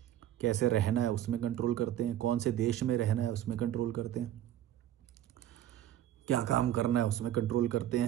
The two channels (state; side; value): quieter; left; 12.1 dB